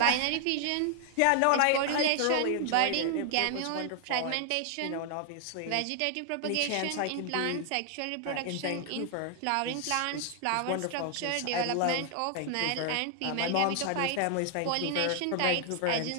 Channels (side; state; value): both; different; correlation 0.00